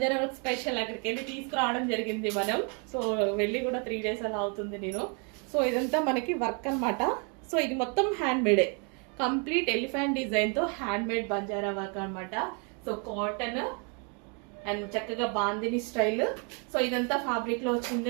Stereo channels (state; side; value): quieter; left; 36.8 dB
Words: వర్క్ స్పెషల్, అక్కడికి వెళ్ళి తీసుకురావడం జరిగింది మనం. సో వెళ్ళి కూడా 3 days అలా అవుతుంది నేను. సో ఇదంతా మనకి వర్క్ అనమాట. సో ఇది మొత్తం హ్యాండ్ మేడే, కంప్లీట్ ఎలిఫెంట్ డిజైన్ తో హ్యాండ్ మేడ్ బంజారా వర్క్ అనమాట. సో కాటన్ అండ్ చక్కగా బాందిని స్టైల్. సో ఇదంతా ఫ్యాబ్రిక్ లో